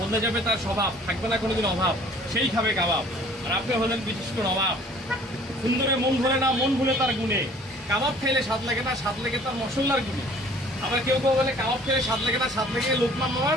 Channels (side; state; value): both; normal; correlation 0.53